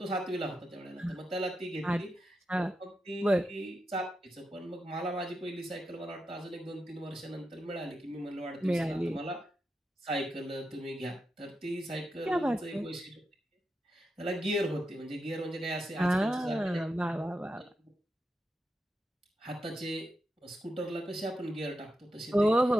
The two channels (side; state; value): both; normal; correlation 0.87